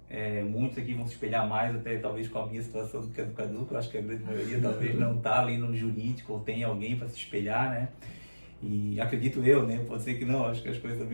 muitos aqui vão se espelhar mais até talvez com a minha situação do que a do Cadu, que eu acho que a grande maioria talvez não está ali no jurídico ou tem alguém para se espelhar, E acredito eu, pode ser que não, acho que as coisas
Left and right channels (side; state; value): both; inverted; correlation -1.00